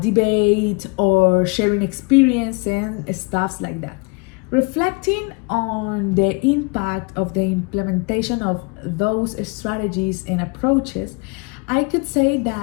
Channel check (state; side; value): quieter; right; 31.1 dB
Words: debate or sharing experience and stuff like that. Reflecting on the impact of the implementation of those strategies and approaches, I could say